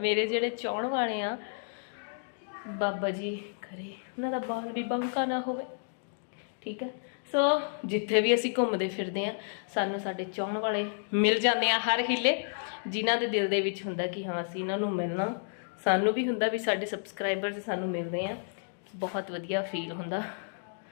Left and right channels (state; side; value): silent; right; digital silence